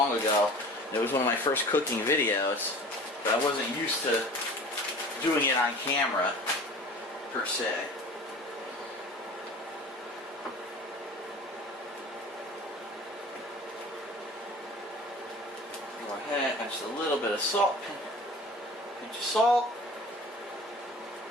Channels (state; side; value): normal; both; correlation 0.42